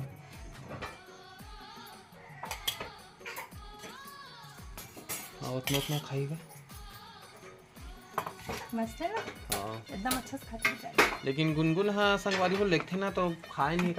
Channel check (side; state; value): both; identical; correlation 1.00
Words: हाँ उतना उतना खाएगा। मस्त है ना, हाँ एकदम अच्छा से खाते हैं। लेकिन गुनगुन हाँ संगवारी हो लेते ना तो खाए नहीं,